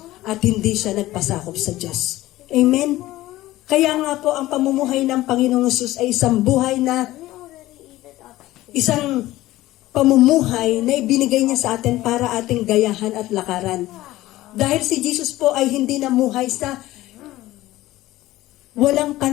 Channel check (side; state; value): right; quieter; 16.6 dB